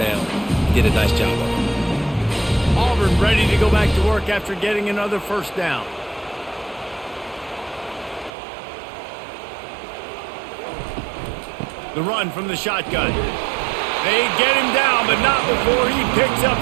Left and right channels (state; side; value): drops out; left; at 8.3 s